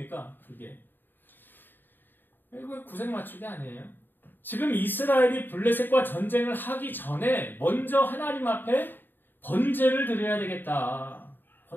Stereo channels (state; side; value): late; right; 0.093 ms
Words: 그게 이거 구색 맞추기 아니에요? 지금 이스라엘이 블레셋과 전쟁을 하기 전에 먼저 하나님 앞에 번제를 드려야 되겠다.